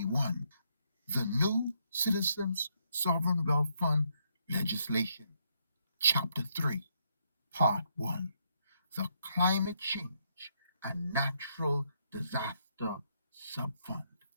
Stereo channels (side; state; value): both; inverted; correlation -0.75